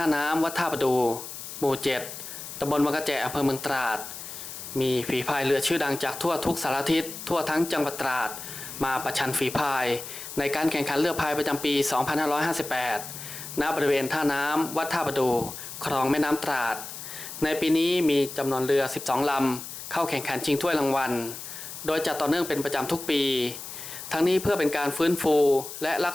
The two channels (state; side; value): noise; left; hiss, 10 dB below the sound